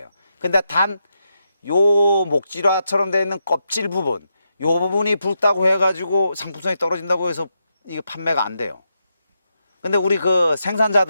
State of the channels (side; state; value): both; inverted; correlation -0.84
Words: 근데 단 요 목질화처럼 되어 있는 껍질 부분, 요 부분이 붉다고 해가지고 상품성이 떨어진다고 해서 이게 판매가 안 돼요. 근데 우리 그